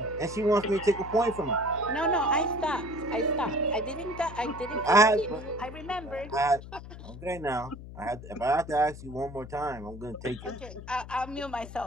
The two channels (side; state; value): left; noise; hum, 13 dB below the sound